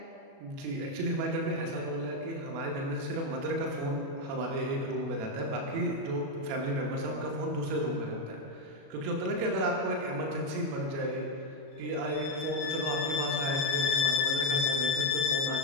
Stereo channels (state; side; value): late; left; 36 ms